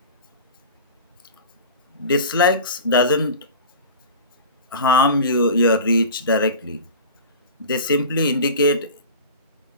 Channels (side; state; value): both; inverted; correlation -0.35